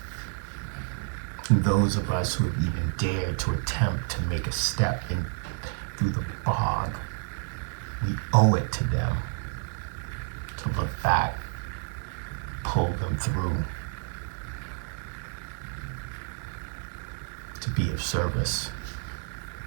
And those of us who have even dared to attempt to make a step in through the bog, we owe it to them to look back, pull them through, to be of service.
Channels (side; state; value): left; silent; 58 dB below the other